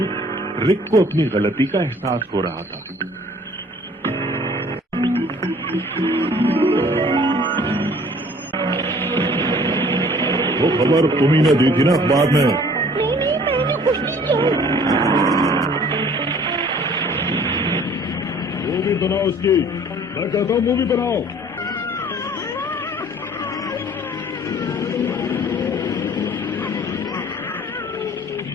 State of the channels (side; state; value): both; normal; correlation 0.53